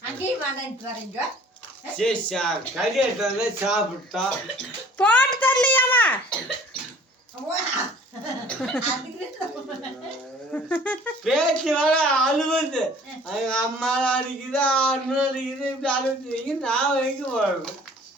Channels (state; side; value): normal; both; correlation 0.52